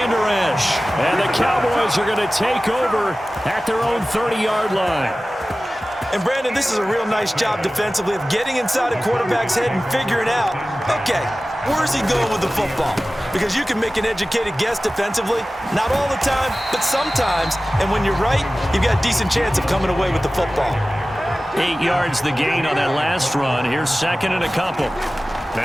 Esch. And the Cowboys are going to take over at their own 30-yard line. And, Brandon, this is a real nice job defensively of getting inside a quarterback's head and figuring out, okay, where's he going with the football? Because you can make an educated guess defensively, not all the time, but sometimes. And when you're right, you've got a decent chance of coming away with the football. 8 yards the gain on that last run. Here's 2nd and a couple.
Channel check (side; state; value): both; normal; correlation 0.96